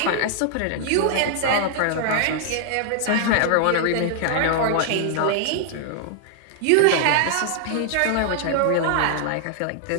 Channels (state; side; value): different; both; correlation 0.00